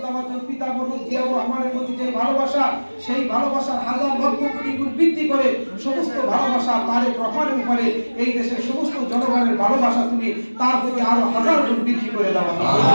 পিতা মরহুম জিয়াউর রহমানের প্রতি যেই ভালোবাসা, সেই ভালোবাসার হাজার লক্ষ কোটি গুণ বৃদ্ধি করে সমস্ত ভালোবাসা তারেক রহমানের উপরে এই দেশের সমস্ত জনগণের ভালোবাসা তুমি তার প্রতি আরো হাজার গুণ বৃদ্ধি করে দাও।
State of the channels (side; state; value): both; inverted; correlation -1.00